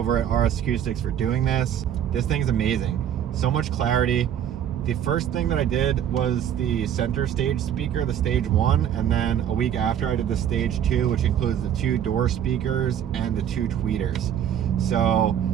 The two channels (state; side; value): quieter; left; 9.7 dB